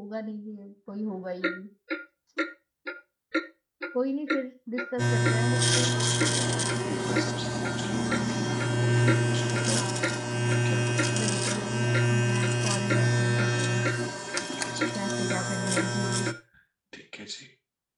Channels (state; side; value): identical; both; correlation 1.00